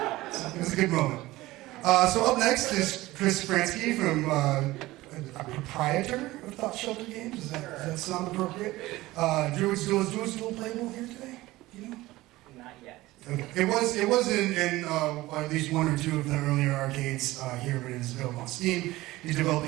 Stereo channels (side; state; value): left; quieter; 18.3 dB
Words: was a good moment. So up next is Chris Fransky from a proprietor of Thought Shelter Games. Does that sound appropriate? Druid's Duel playable here today? You know? Not yet. Okay. It was in at least one or two of the earlier arcades here, but it is available on Steam. He's